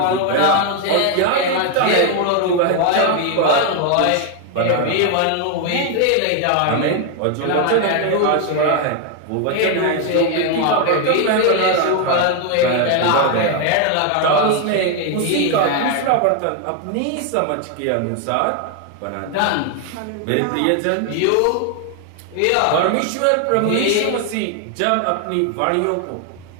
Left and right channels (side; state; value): both; different; correlation 0.01